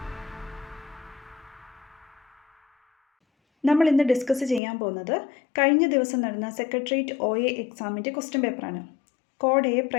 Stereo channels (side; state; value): right; drops out; at 4.6 s